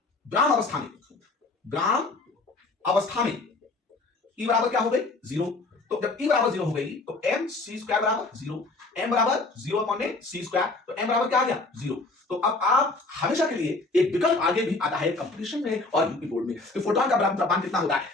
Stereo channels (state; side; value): quieter; right; 3.3 dB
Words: ब्राह्म अवस्था में E बराबर क्या हो गई? 0। तो जब E बराबर 0 हो गई तो mc² बराबर 0, m बराबर 0/c²। तो m बराबर क्या आ गया? 0। तो अब आप हमेशा के लिए एक विकल्प आगे भी आता है कंपटीशन में और यूपी बोर्ड में कि फोटॉन का ब्राह्म द्रव्यमान कितना होता है?